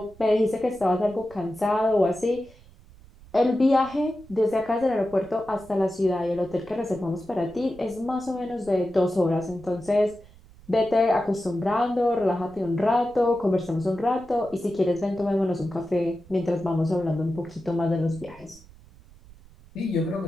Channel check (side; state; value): right; noise; rumble, 23 dB below the sound